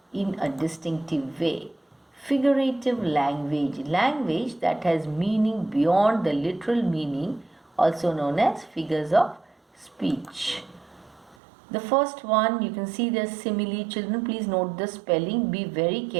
in a distinctive way. Figurative language. Language that has meaning beyond the literal meaning, also known as figures of speech. The first one, you can see the simile. Children, please note the spelling. Be very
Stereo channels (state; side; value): drops out; left; at 11.4 s